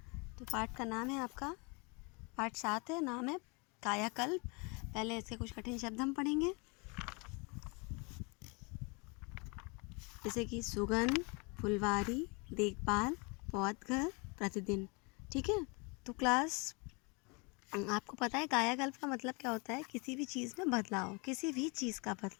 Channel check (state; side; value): quieter; right; 30.6 dB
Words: तो पाठ का नाम है आपका, पाठ 7 है, नाम है कायाकल्प। पहले इसके कुछ कठिन शब्द हम पढ़ेंगे, जैसे कि सुगंध, फुलवारी, देखभाल, पौधघर, प्रतिदिन। ठीक है, तो क्लास आपको पता है कायाकल्प का मतलब क्या होता है? किसी भी चीज़ में बदलाव, किसी भी चीज़ का